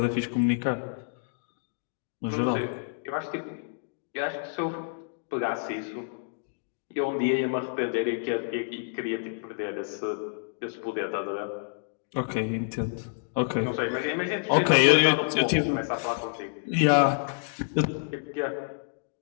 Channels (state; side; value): silent; right; digital silence